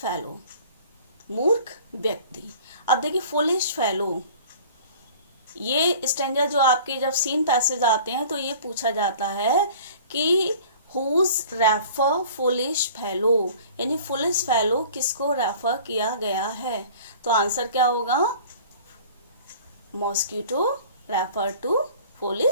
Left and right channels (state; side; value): inverted; both; correlation -0.46